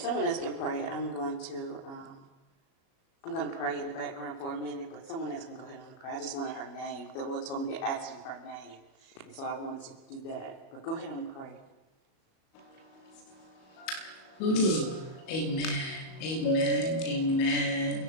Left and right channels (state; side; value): late; right; 37 ms